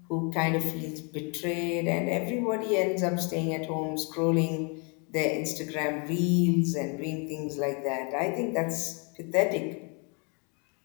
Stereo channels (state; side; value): quieter; right; 34.9 dB